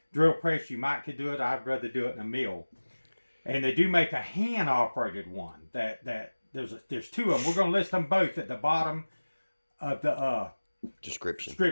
drill press, you might could do it. I'd rather do it in a mill. And they do make a hand operated one. There's two of them. We're going to list them both at the bottom of the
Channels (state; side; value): inverted; both; correlation -1.00